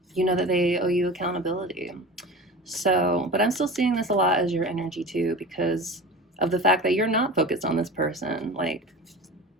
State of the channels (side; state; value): both; normal; correlation 0.33